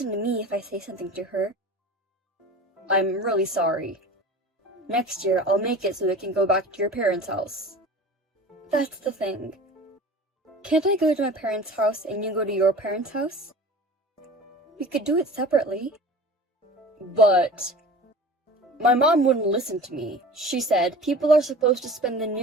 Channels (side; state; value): both; normal; correlation 0.38